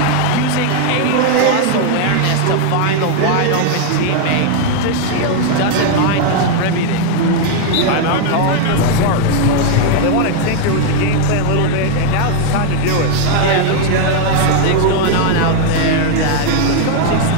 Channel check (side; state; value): both; different; correlation 0.00